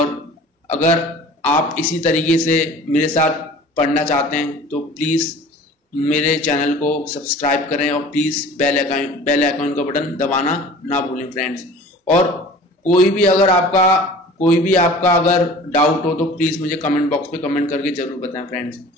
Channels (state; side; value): normal; both; correlation 0.44